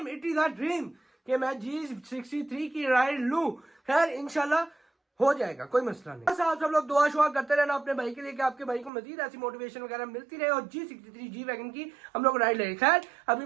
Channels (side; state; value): left; drops out; at 8.9 s